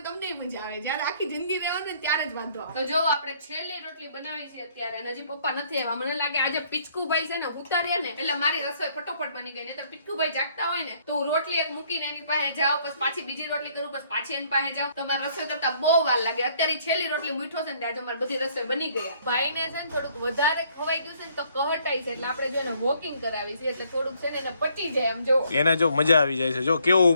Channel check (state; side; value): inverted; both; correlation -0.65